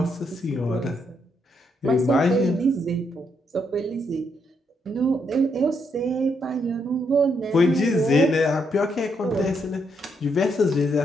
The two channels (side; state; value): both; normal; correlation 0.77